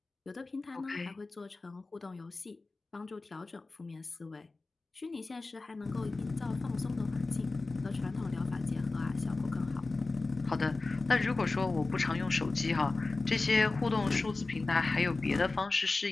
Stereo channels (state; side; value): quieter; right; 3.5 dB